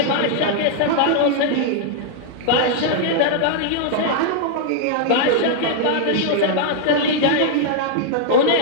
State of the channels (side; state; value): both; different; correlation 0.00